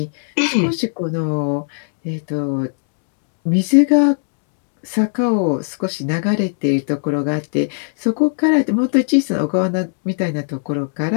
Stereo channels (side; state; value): right; silent; digital silence